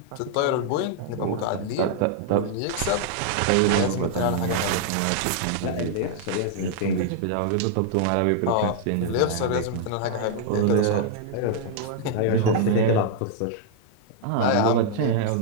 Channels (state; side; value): different; both; correlation -0.01